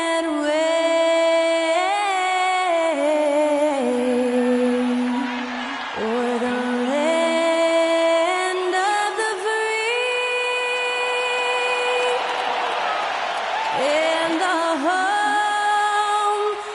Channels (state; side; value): identical; both; correlation 1.00